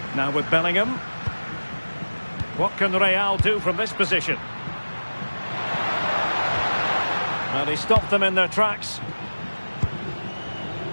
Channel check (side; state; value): both; inverted; correlation -1.00